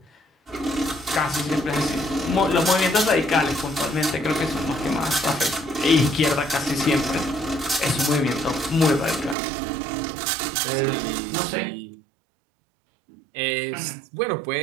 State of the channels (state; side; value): drops out; left; at 9.3 s